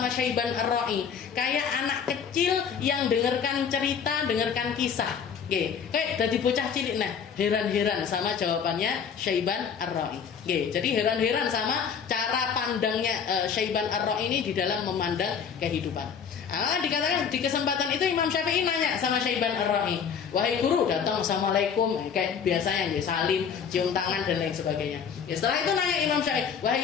Syaiban Ar-Ra'i, kayak anak kecil yang dengarkan cerita, dengarkan kisah. Kayak dari bocah cilik. Nah, heran-heran sama jawabannya Syaiban Ar-Ra'i. Jadi heran-heran sama cara pandangnya Syaiban Ar-Ra'i ini di dalam memandang kehidupan. Dikatakan di kesempatan itu Imam Syafi'i nanya sama Syaiban Ar-Ra'i, wahai guru, datang assalamualaikum kayak biasanya, salim, cium tangan dan lain sebagainya. Setelah itu nanya Imam Syafi'i, wahai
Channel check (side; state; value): right; quieter; 7.0 dB